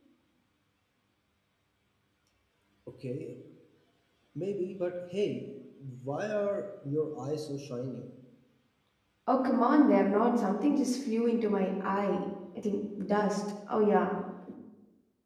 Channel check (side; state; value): both; identical; correlation 1.00